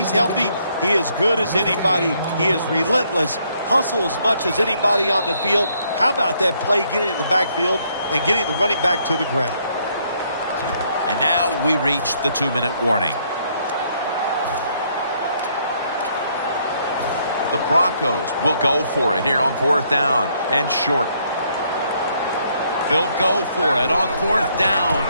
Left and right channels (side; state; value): both; inverted; correlation -0.70